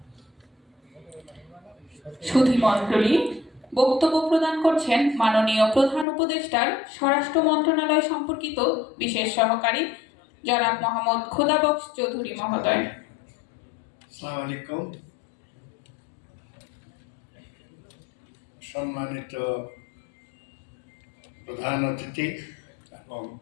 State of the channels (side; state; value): right; drops out; at 6.1 s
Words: সুধী মণ্ডলী, বক্তব্য প্রদান করছেন মাননীয় প্রধান উপদেষ্টার স্বরাষ্ট্র মন্ত্রণালয় সম্পর্কিত বিশেষ সহকারী জনাব মোহাম্মদ খোদাবক্স চৌধুরী মহোদয়। আসসালামু আলাইকুম। সম্মানিত প্রধান অতিথি এবং